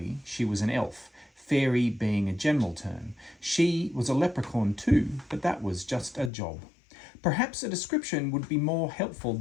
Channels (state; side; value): drops out; right; at 6.3 s